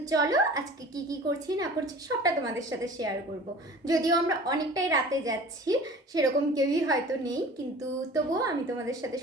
চলো আজকে কি কি করছি না করছি সবটা তোমাদের সাথে শেয়ার করব। যদিও আমরা অনেকটাই রাতে যাচ্ছি, সেরকম কেউই হয়তো নেই, কিন্তু তবুও আমি তোমাদের সাথে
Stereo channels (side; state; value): both; normal; correlation 0.42